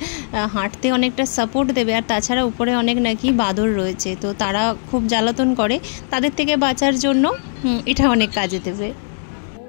হাঁটতে অনেকটা সাপোর্ট দেবে। আর তাছাড়া উপরে অনেক নাকি বাদর রয়েছে, তো তারা খুব জ্বালাতন করে, তাদের থেকে বাঁচার জন্য এটা অনেক কাজে দেবে।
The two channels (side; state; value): right; silent; 62 dB below the other